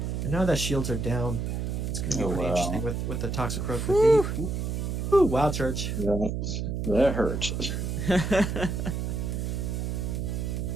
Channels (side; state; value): right; noise; hum, 2 dB below the sound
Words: And now that shields are down, it's going to be pretty interesting with the Toxicroak. Ooh, wild charge. Yeah, that hurt.